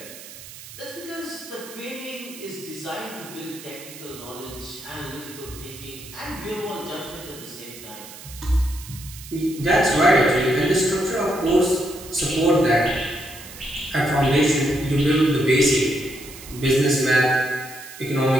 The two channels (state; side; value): noise; right; hiss, 15 dB below the sound